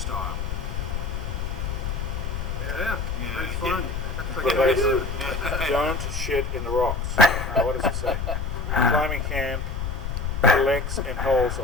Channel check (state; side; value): noise; left; rumble, 3 dB below the sound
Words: Yeah, it's fun. Don't shit in the rocks. What does it say? Climbing camp collects and holds a